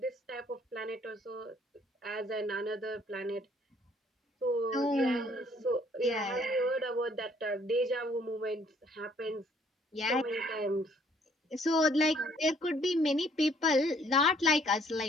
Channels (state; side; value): normal; both; correlation 0.62